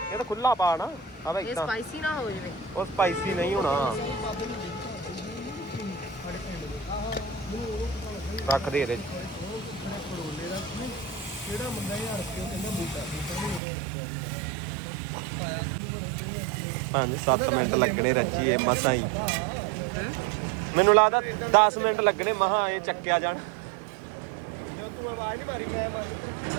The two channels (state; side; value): drops out; left; at 13.6 s